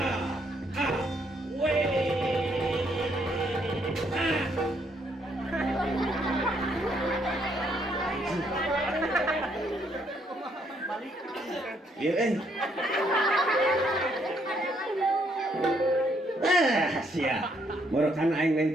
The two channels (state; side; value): normal; both; correlation 0.71